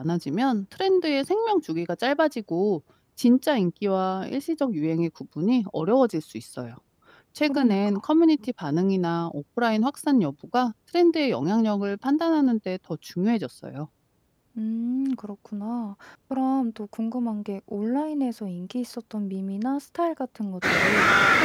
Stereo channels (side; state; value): both; identical; correlation 1.00